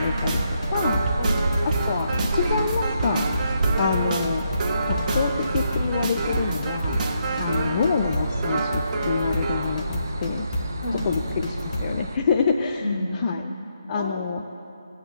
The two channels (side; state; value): both; inverted; correlation -0.77